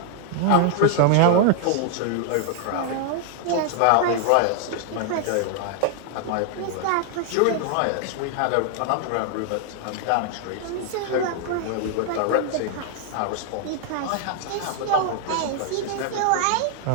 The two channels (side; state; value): both; different; correlation 0.00